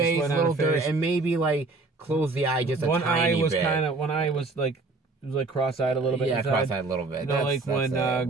little dirt, and maybe like close the eye just a tiny bit. One eye was like it was like cross-eyed a little bit. Yeah, inside. cross-eyed a little bit. Like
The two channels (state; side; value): quieter; left; 3.5 dB